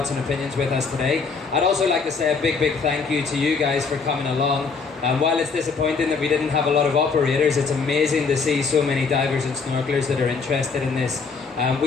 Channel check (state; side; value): quieter; right; 4.9 dB